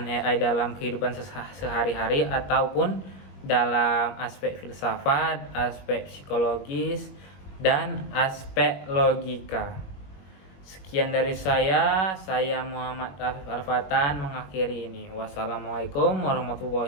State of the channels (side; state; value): right; late; 21 ms